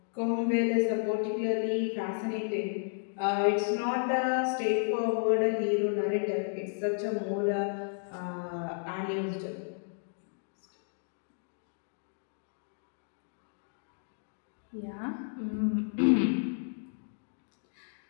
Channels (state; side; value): silent; right; digital silence